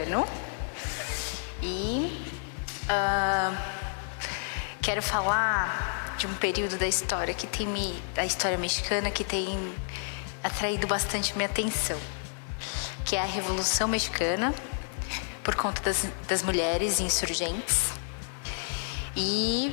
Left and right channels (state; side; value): silent; right; digital silence